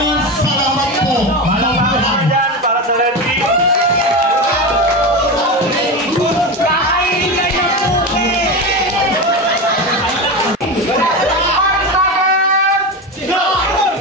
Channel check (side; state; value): both; normal; correlation 0.20